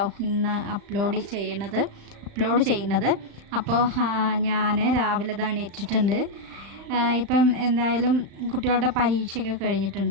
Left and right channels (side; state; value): left; late; 35 ms